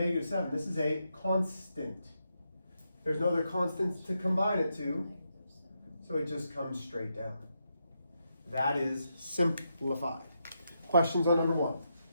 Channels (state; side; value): inverted; both; correlation -0.83